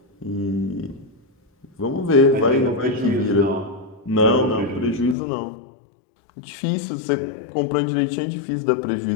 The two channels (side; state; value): right; drops out; at 5.2 s